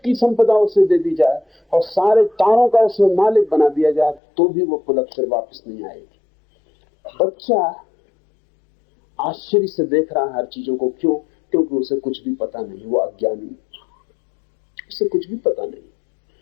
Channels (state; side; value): drops out; right; at 4.2 s